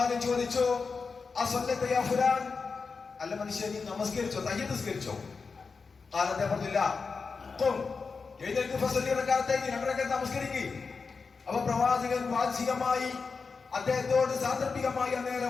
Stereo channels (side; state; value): right; quieter; 4.8 dB